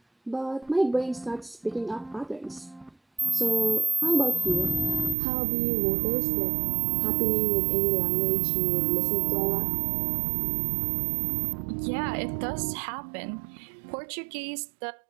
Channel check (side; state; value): left; drops out; at 5.2 s